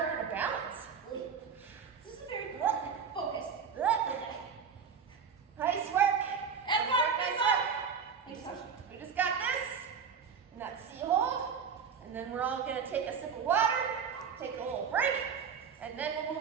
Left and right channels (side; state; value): left; quieter; 6.5 dB